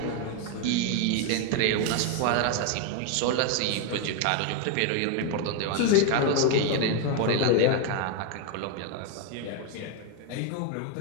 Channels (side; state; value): both; different; correlation 0.01